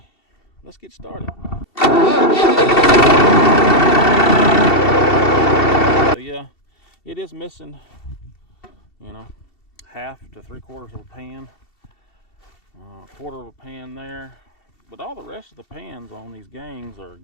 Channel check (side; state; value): right; late; 2.7 ms